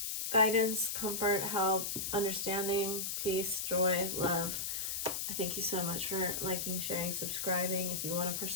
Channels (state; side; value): noise; left; hiss, 2 dB below the sound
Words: guidance, comfort, help, understanding, peace, joy, love. I thank you so much for liking, sharing, subscribing. If you want a